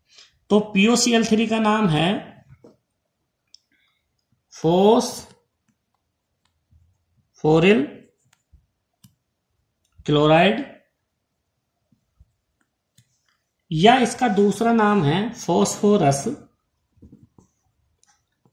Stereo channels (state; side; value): identical; both; correlation 1.00